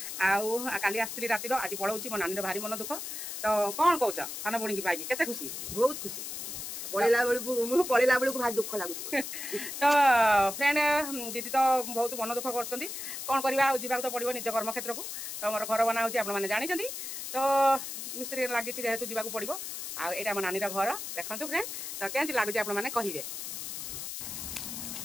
काली आसती राति आज पढ़ाऊँ मो नानी भारी मन दुख तो कौन कौच सान भणी की पाई केते खुशी बहुत खुशी पढ़ेला बेलू भारी दुख लगुच तो फ्रेंड दीदी तो बहुत मन दुख कर कौन करवा जावाक तो पड़ो निज कर्मक्षेत्र को तो मोर घर बना होने जानते तो मिस्त्री लगी जेहेतु जावाक पड़ो आईटा मो नानी घर देखो फ्रेंड तो केमती लगुच आपने कहे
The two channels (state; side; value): noise; left; hiss, 6 dB below the sound